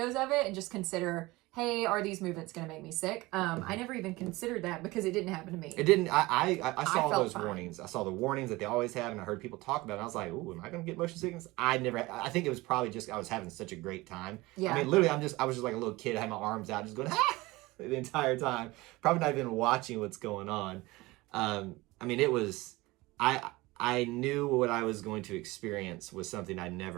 of it and just consider, hey, are these movements going to make me sick? I never even considered that because it didn't happen to me. It didn't. I saw felt those fine. warnings. I saw the warnings that they always have, and I heard people talk about it. And I was like, "Ooh, am I going to get motion sickness?" I never. I think it was probably just I was having such a great time. Yeah. I mean, literally, I was just like a little kid. I had my arms out, just going the entire time. Probably not even watching what's going on. I mean, it was. I knew what I was going to experience was something I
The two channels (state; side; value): quieter; left; 21.0 dB